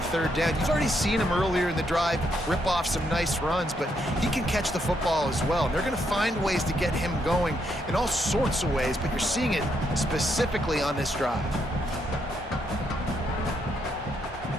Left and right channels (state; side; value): normal; both; correlation 0.76